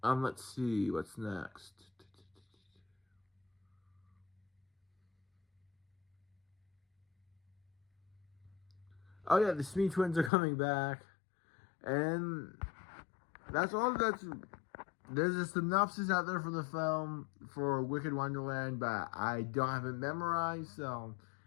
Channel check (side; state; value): right; drops out; at 10.3 s